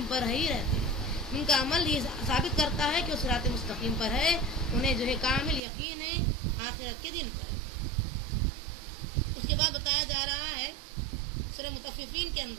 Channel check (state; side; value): drops out; left; at 5.6 s